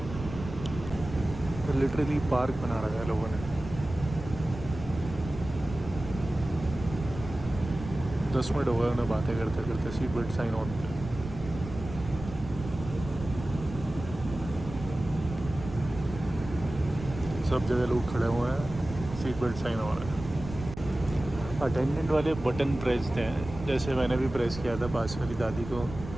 लिटरली पार्क बना रखा है लोगों ने। 10 मिनट हो गए उन्हें बातें करते करते। Seat belt sign on. सब जगह लोग खड़े हुए हैं, सीट बेल्ट साइन हो रहा है। अटेंडेंट वाले बटन प्रेस हैं, जैसे मैंने भी प्रेस किया था। पास वाली दादी को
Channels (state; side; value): noise; right; rumble, 11 dB below the sound